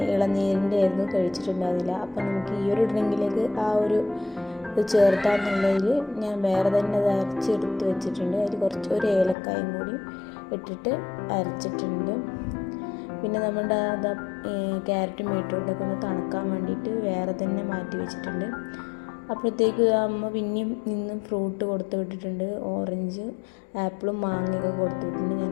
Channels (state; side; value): drops out; right; at 9.3 s